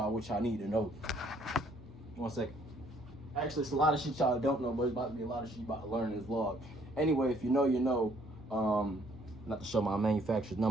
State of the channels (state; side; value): normal; both; correlation 0.64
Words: what y'all need to know. 1 second. Actually, it's a lot of shit y'all don't know, but it's about to be a lot of shit you about to learn in this vlog. Anyway, if you know, you know. Not to show my manufacturer's